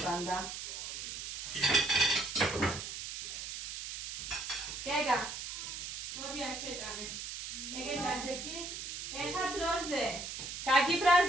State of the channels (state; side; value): noise; right; hiss, 7 dB below the sound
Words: გეგა, მოდი აქ შეჭამე. ეგეთ აჟექი, ეხა დროზე.